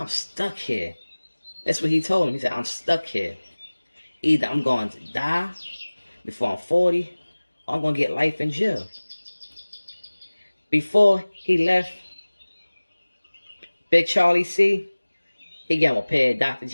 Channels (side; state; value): both; inverted; correlation -1.00